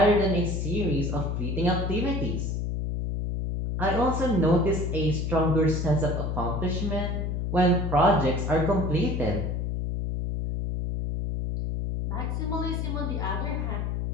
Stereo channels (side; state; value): left; noise; hum, 1 dB below the sound